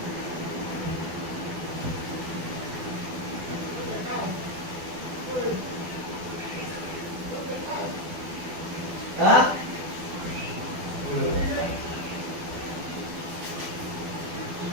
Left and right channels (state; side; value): late; left; 12 ms